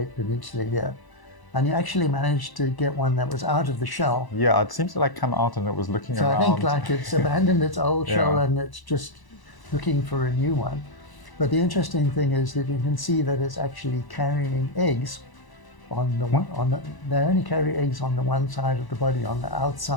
Peninsula here. And you actually managed to get one that was out of the shell. Yeah, it seems to like come out and it was looking So around. I think like it's abandoned its old shell Yeah. and it's just looking for a new one. But the interesting thing is that you can see that it's actually carrying eggs on the they only carry eggs on the one side of the body, on the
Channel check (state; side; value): late; right; 1.0 ms